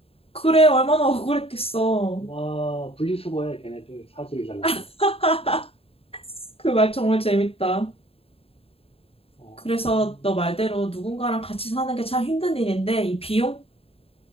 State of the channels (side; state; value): right; late; 0.28 ms